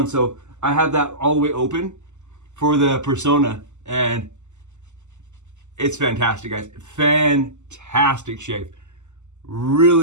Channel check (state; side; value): late; left; 0.84 ms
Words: So I had that all the way open for the Personna, and it's fantastic, guys. Fantastic shave.